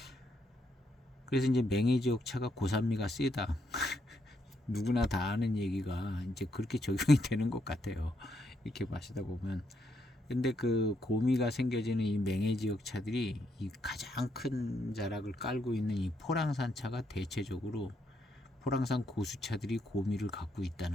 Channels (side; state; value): both; normal; correlation 0.77